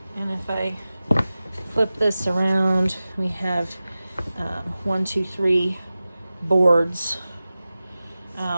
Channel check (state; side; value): inverted; both; correlation -0.96